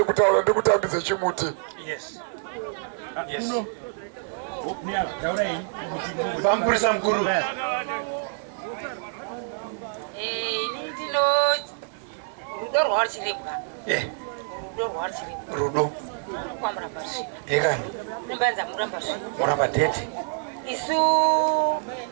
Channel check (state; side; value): silent; left; digital silence